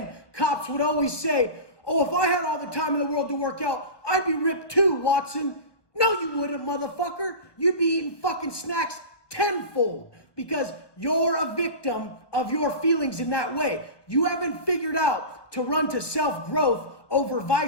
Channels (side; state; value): right; late; 1.2 ms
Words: cops would always say, oh, if I had all the time in the world to work out, I'd be ripped too, Watson. No, you wouldn't, motherfucker. You'd be eating fucking snacks tenfold because you're a victim of your feelings in that way. You haven't figured out to run to self-growth over